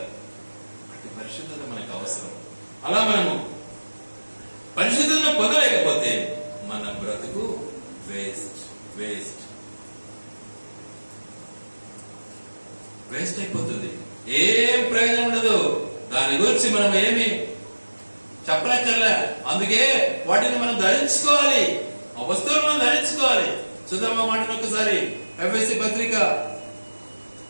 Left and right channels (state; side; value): inverted; both; correlation -1.00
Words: అట్టి పరిశుద్ధత మనకు అవసరం. అలా మనము పరిశుద్ధతను పొందలేకపోతే మన బ్రతుకు వేస్ట్ వేస్ట్ వేస్ట్ అయిపోతుంది. ఏం ప్రయోజనం ఉండదు. దాని గురించి మనం ఏమి చెప్పనక్కర్లే. అందుకే వాటిని మనం ధరించుకోవాలి, ఆ వస్తువులు మనం ధరించుకోవాలి. చూద్దాం ఆ మాటను ఒకసారి. ఎఫెసీ పత్రిక